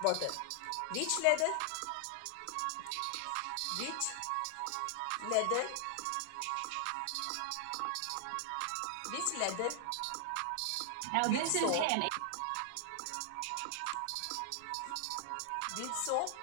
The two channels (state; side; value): different; both; correlation 0.00